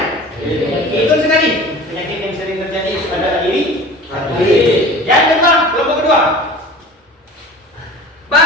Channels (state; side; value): normal; both; correlation 0.40